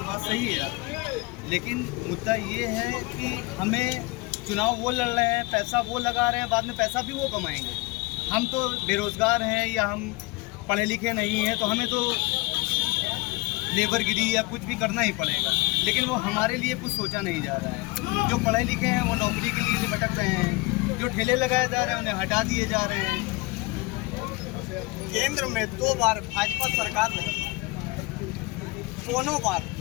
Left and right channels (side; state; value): right; quieter; 23.9 dB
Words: बात सही है आपकी, लेकिन मुद्दा ये है कि हमें चुनाव वो लड़ रहे हैं, पैसा वो लगा रहे हैं, बाद में पैसा भी वो कमाएंगे। हम तो बेरोज़गार हैं या हम पढ़े लिखे नहीं हैं, तो हमें तो लेबरगिरी या कुछ भी करना ही पड़ेगा, लेकिन वो हमारे लिए कुछ सोचा नहीं जा रहा है। जो पढ़े लिखे हैं वो नौकरी के लिए भटक रहे हैं, जो ठेले लगाए जा रहे हैं उन्हें हटा दिए जा रहे हैं। केंद्र में 2 बार भाजपा सरकार रही, दोनों बार